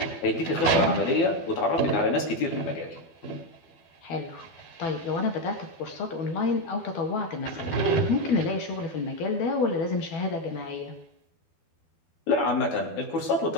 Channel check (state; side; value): late; right; 12 ms